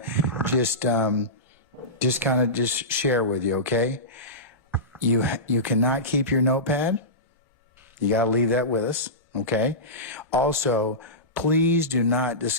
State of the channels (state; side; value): normal; both; correlation -0.18